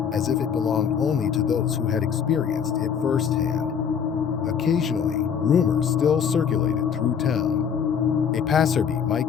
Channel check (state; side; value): quieter; right; 7.4 dB